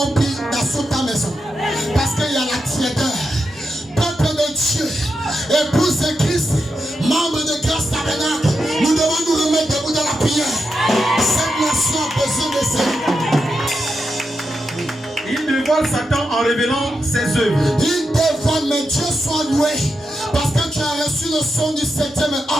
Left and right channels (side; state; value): both; normal; correlation 0.87